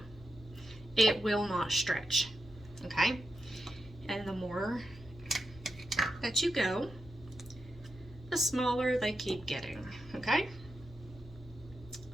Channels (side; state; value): both; normal; correlation 0.87